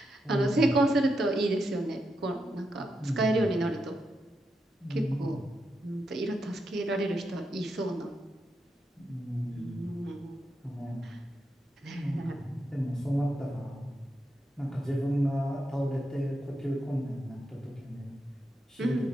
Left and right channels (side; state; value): both; normal; correlation 0.84